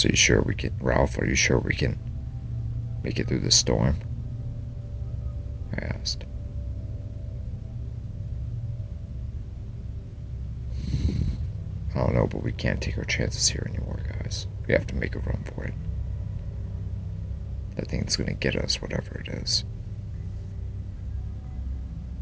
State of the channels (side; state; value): both; identical; correlation 1.00